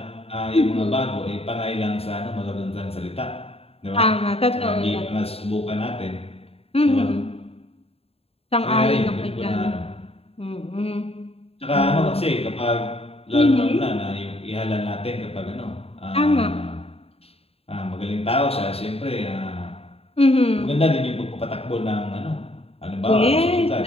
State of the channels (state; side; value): late; right; 0.29 ms